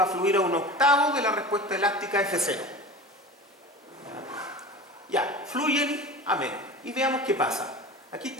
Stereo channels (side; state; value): both; normal; correlation 0.34